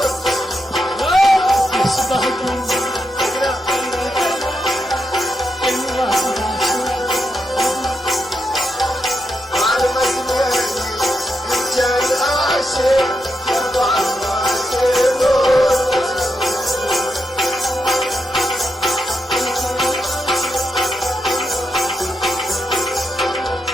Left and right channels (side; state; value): both; normal; correlation 0.84